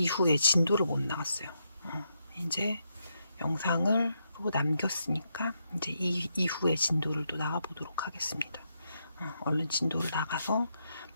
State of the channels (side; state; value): both; inverted; correlation -0.81